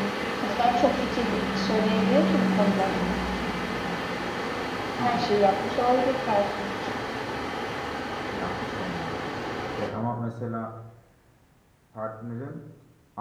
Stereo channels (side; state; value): both; identical; correlation 1.00